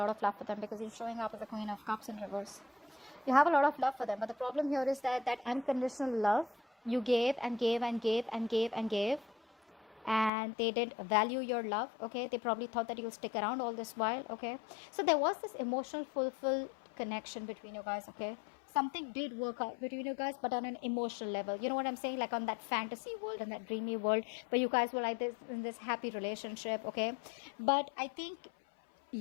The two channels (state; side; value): drops out; right; at 10.3 s